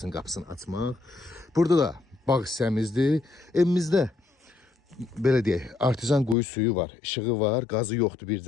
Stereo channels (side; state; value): right; drops out; at 6.4 s